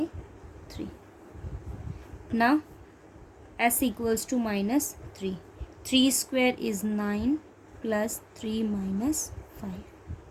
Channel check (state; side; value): identical; both; correlation 1.00